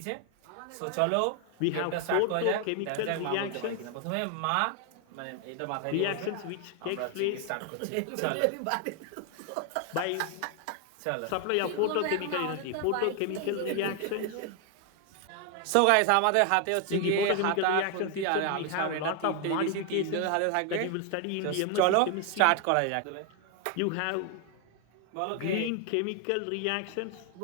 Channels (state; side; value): different; both; correlation 0.00